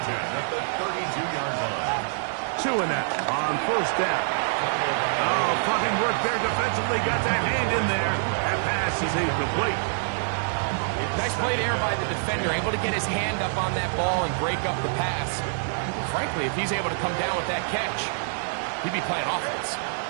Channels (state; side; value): silent; left; 56 dB below the other